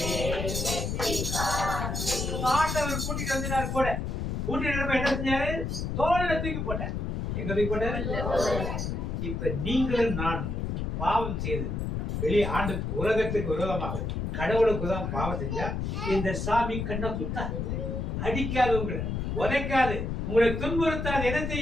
வெற்றி காண்பேன். ஆண்டவர் கூட்டிட்டு வந்தாரு கூட. கூட்டிட்டு என்ன செஞ்சாரு? தோல்ல தூக்கி போட்டார். எங்க தூக்கி போட்டாரு? இப்ப நீங்களும் நானும் பாவம் செய்து வெளியே ஆண்டு உலகத்துக்கு விரோதமாக கடவுளுக்கு தான் பாவம் செஞ்சா இந்த சாமி கண்ணை குத்தாது, அடிக்காது, உங்களை உதைக்காது, உங்களை துன்புறுத்தாது. என்ன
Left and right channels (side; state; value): left; noise; rumble, 2 dB below the sound